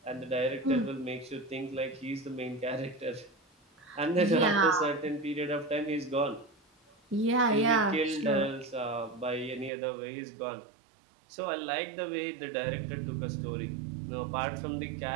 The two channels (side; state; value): left; drops out; at 9.7 s